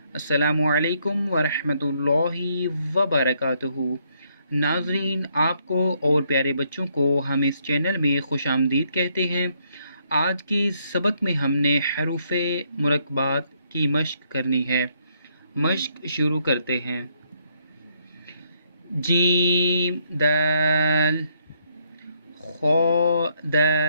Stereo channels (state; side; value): inverted; both; correlation -0.73